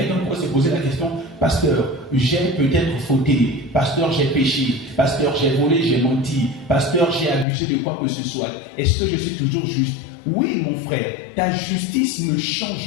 pourrait se poser la question, pasteur, j'ai peut-être fauté, pasteur, j'ai péché, pasteur, j'ai volé, j'ai menti, pasteur, j'ai abusé de quoi que ce soit. Est-ce que je suis toujours juste? Oui, mon frère, ta justice ne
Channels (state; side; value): drops out; right; at 7.5 s